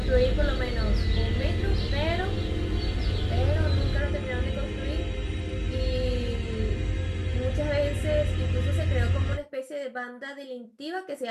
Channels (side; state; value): both; identical; correlation 1.00